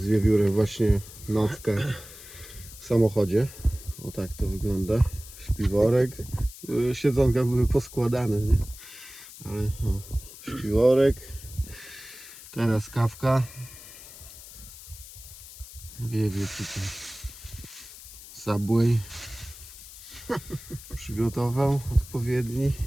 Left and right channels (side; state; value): left; noise; hiss, 16 dB below the sound